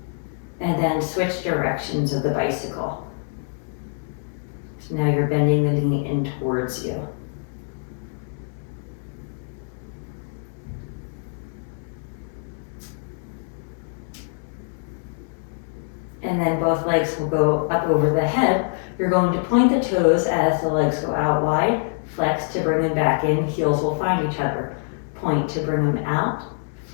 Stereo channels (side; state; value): right; silent; digital silence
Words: And then switch directions of the bicycle. So now you're bending the knee in towards you. And and then both legs will go up over the head. You're going to point the toes as the legs go out wide, flex to bring them back in, heels will find each other. Point to bring them out,